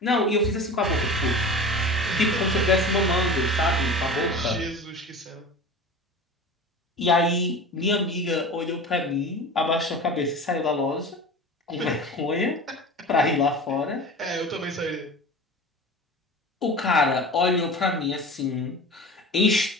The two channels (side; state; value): both; normal; correlation 0.34